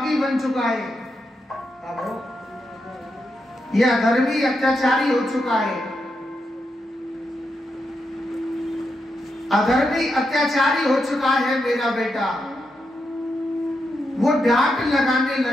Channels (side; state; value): both; normal; correlation 0.85